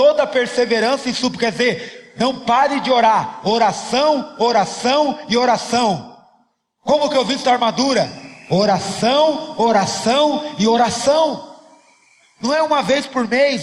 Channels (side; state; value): both; identical; correlation 1.00